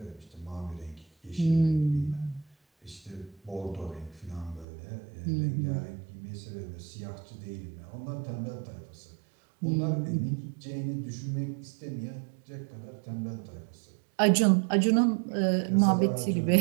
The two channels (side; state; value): left; drops out; at 4.7 s